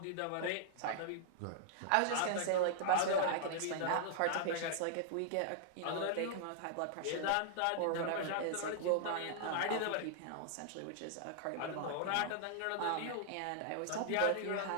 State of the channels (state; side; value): different; both; correlation -0.01